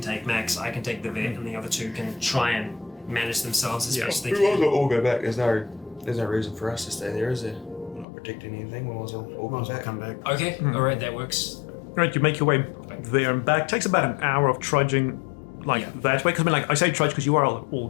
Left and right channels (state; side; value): drops out; right; at 8.1 s